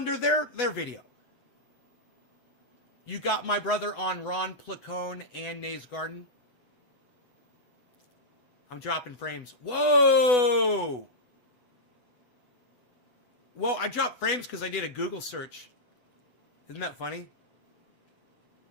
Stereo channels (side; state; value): right; late; 8.1 ms